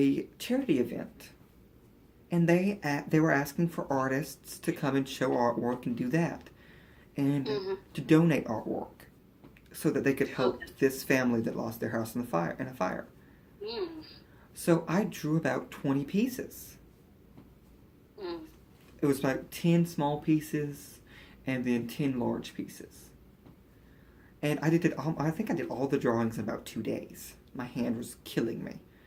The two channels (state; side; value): identical; both; correlation 1.00